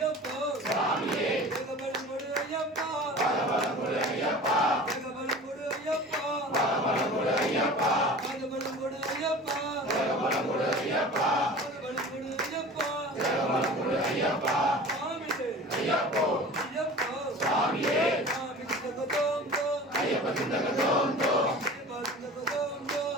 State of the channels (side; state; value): both; normal; correlation 0.39